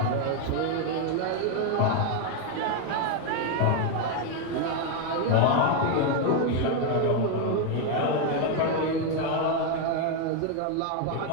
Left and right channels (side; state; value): both; different; correlation 0.01